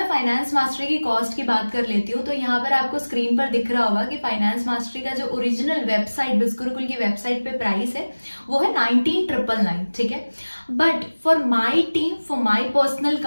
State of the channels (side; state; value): both; inverted; correlation -1.00